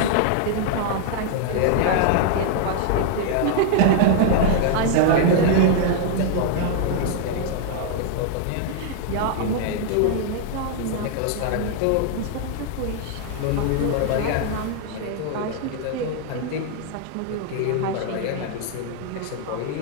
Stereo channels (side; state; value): both; different; correlation 0.00